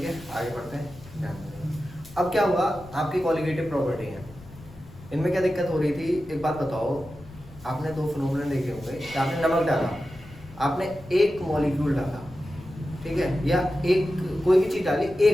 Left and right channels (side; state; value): left; noise; rumble, 19 dB below the sound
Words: है आगे बढ़ते हैं, ध्यान देंगे। अब क्या हुआ, आपकी कॉलिगेटिव प्रॉपर्टी है, इनमें क्या दिक्कत हो रही थी, एक बात बताओ, आपने दो फिनोमेनन देखे होंगे कि आपने नमक डाला, आपने एक मॉलिक्यूल डाला, ठीक है, या एक कोई भी चीज़ डाली,